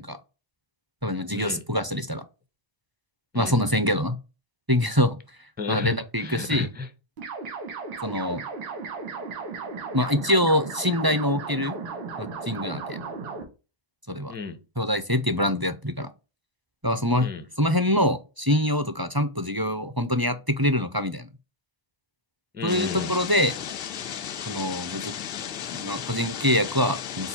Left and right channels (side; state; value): left; late; 1.0 ms